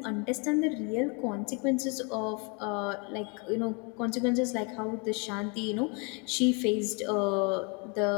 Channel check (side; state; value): right; quieter; 32.9 dB